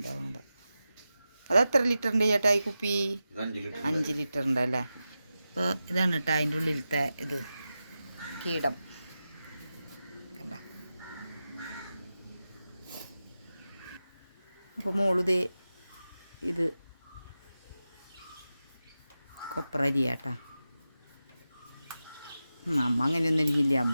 അത് എത്ര ലിറ്ററിൻ്റെ ചേട്ടാ ഈ കുപ്പി? 5 ലിറ്ററിൻ്റെ അല്ലേ. അപ്പോൾ ഇതാണ് കേട്ടോ അതിൻ്റെ ഉള്ളിലത്തെ ഇത് കീടം കണ്ട. അപ്പോൾ മോളുതേ ഇത് കൊപ്ര അരിയാട്ടാ. അമ്മ അങ്ങനെയൊന്നും അരിഞ്ഞില്ല.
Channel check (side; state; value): both; inverted; correlation -0.92